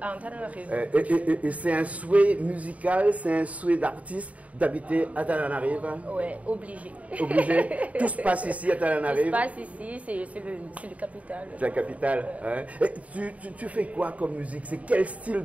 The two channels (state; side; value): late; left; 0.068 ms